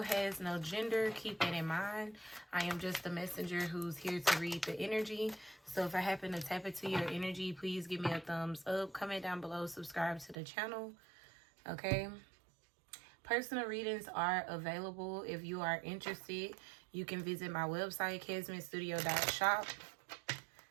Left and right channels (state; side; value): drops out; left; at 10.4 s